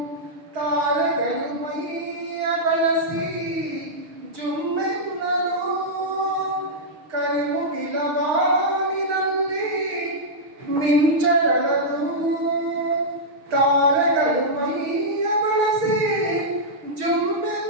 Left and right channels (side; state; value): left; late; 6.4 ms